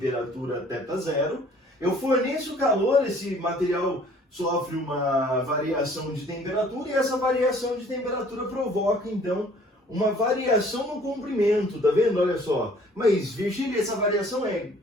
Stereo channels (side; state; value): both; normal; correlation 0.55